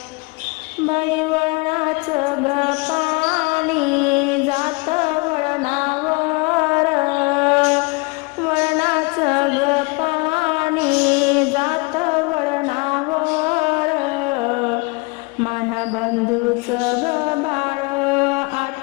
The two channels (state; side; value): quieter; right; 28.4 dB